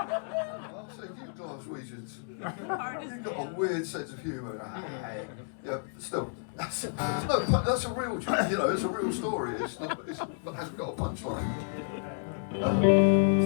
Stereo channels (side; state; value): right; silent; digital silence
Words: said, you Glaswegians, you've got a weird sense of humour. Yeah, still, that's a real, it's a real story. It hasn't got a punchline.